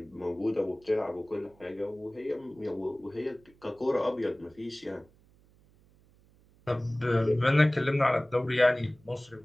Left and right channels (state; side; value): noise; right; hum, 30 dB below the sound